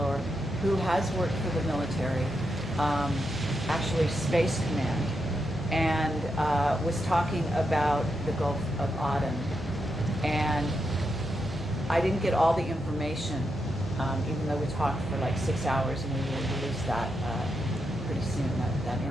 who has worked for the military, actually Space Command, and was talking about the Gulf of Aden. And I didn't get all the information, even though we talked for like 6 hours, and we will release that pretty soon, that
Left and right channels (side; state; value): both; normal; correlation 0.84